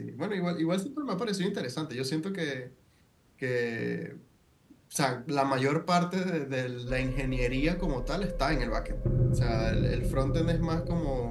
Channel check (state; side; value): identical; both; correlation 1.00